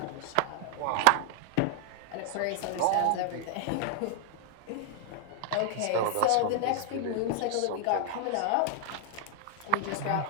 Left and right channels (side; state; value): both; different; correlation 0.00